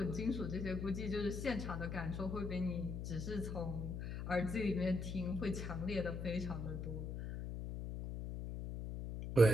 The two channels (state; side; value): noise; left; hum, 5 dB below the sound